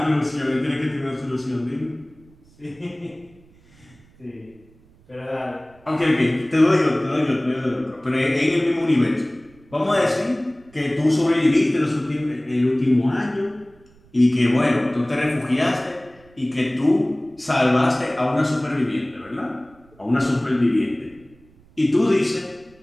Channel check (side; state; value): right; noise; rumble, 28 dB below the sound